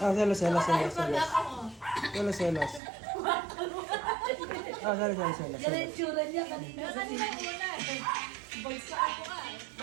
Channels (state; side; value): drops out; left; at 2.8 s